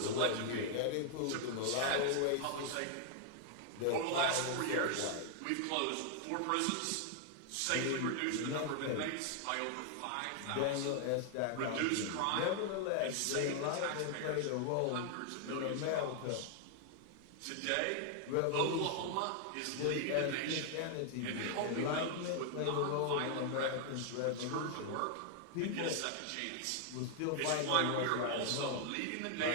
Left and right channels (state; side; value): different; both; correlation 0.00